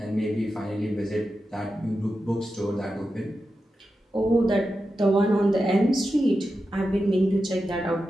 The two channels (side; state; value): both; normal; correlation 0.90